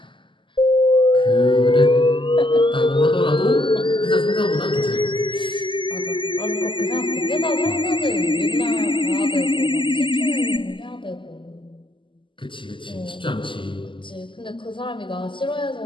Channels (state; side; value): late; right; 0.24 ms